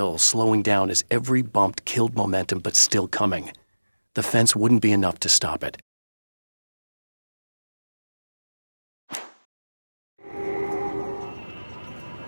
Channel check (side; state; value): both; inverted; correlation -1.00